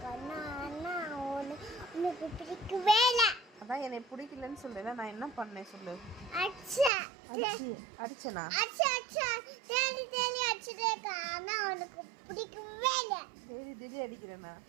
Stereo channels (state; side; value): drops out; left; at 6.9 s